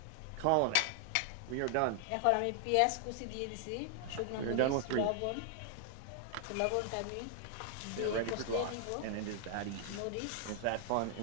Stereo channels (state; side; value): different; both; correlation 0.00